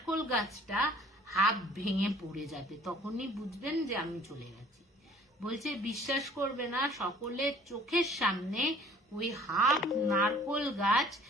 গাছটা হাফ ভেঙে পড়ে যাবে, তখনই বুঝবেন যে আমি চলে গেছি। বলছে বিশ্বাস করবে না, সকলের চোখের সামনে ওই হাফ নারকোল গাছ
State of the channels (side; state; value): both; normal; correlation 0.52